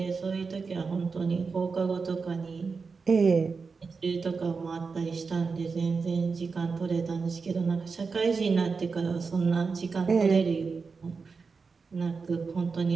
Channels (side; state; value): left; quieter; 4.8 dB